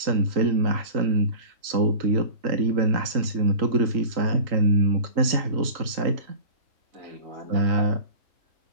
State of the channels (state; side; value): late; left; 3.8 ms